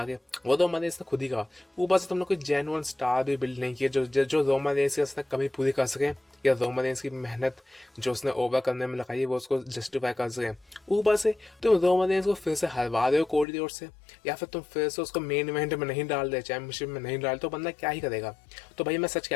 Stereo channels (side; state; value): right; drops out; at 13.5 s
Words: के, वो रोमन रेंस ने खुद ही कहा। ऊपर से तुमने कोई जेन्युइन स्टार भी बिल्ड नहीं किया जो रोमन रेंस की उसने कभी पूरी कर सके, या रोमन रेंस की मेहनत जो उसने ओवर करने में लगाई वो उसको जस्टिफाई कर सके। ऊपर से तुम रोमन रेंस को फिर से हरवा रहे हो कोडी रोड से, या फिर तुम फिर से उसको मेन इवेंट में नहीं डाल दे, चैंपियनशिप में नहीं डाल, तो बंदा क्या ही करेगा। तो भाई मैं सच कह